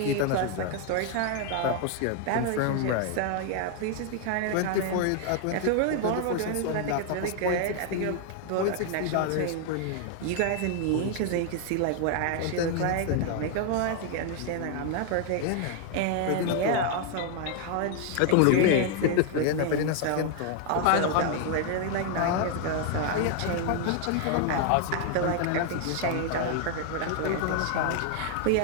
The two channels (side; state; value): both; different; correlation 0.00